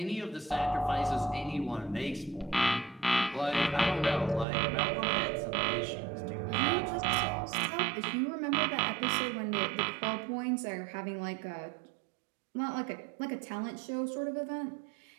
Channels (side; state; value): left; drops out; at 4.5 s